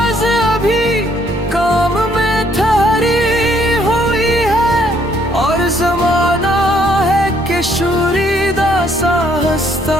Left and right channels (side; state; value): both; normal; correlation 0.67